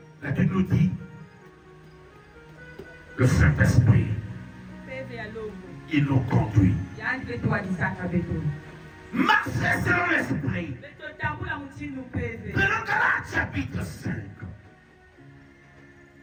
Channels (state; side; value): identical; both; correlation 1.00